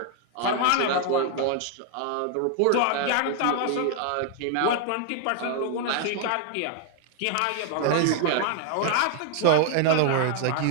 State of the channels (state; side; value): different; both; correlation 0.00